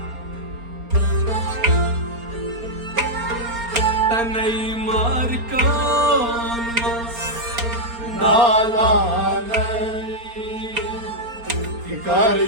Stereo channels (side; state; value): left; late; 4.3 ms